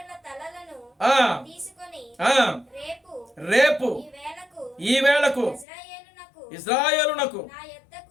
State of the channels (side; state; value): right; drops out; at 5.7 s